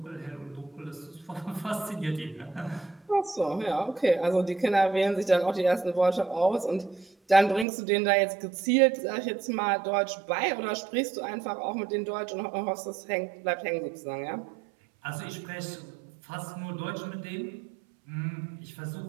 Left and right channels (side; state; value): left; drops out; at 7.7 s